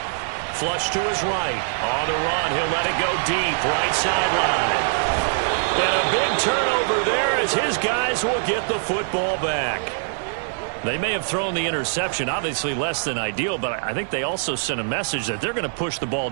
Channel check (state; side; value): silent; left; 58 dB below the other